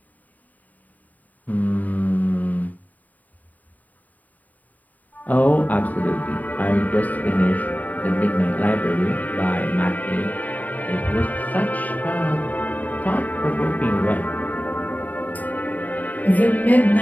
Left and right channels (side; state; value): right; late; 0.077 ms